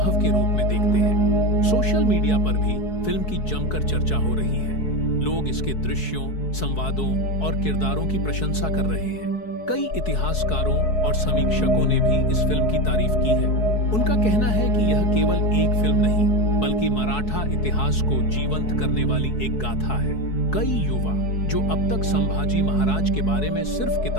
के रूप में देखते हैं। सोशल मीडिया पर भी फिल्म की जमकर चर्चा हो रही है। लोग इसके दृश्यों, संवादों और किरदारों की प्रशंसा कर रहे हैं। कई इतिहासकारों और समीक्षकों ने भी इस फिल्म की तारीफ की है। उनका कहना है कि यह केवल एक फिल्म नहीं, बल्कि मराठा इतिहास को जीवंत करने वाली एक गाथा है। कई युवा जो अब तक संभाजी महाराज के बारे में सिर्फ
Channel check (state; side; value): late; right; 4.7 ms